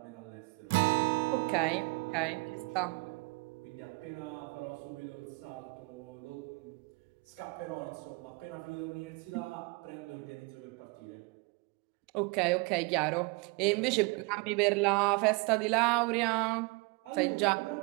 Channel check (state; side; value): quieter; left; 28.3 dB